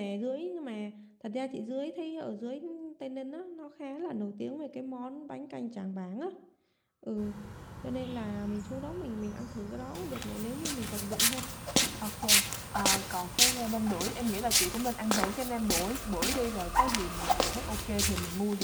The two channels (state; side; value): identical; both; correlation 1.00